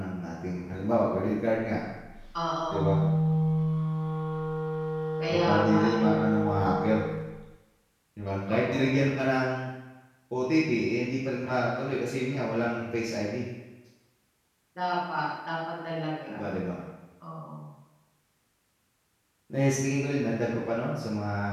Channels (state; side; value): identical; both; correlation 1.00